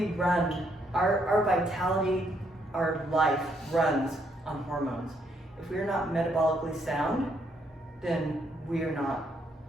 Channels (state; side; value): normal; both; correlation 0.73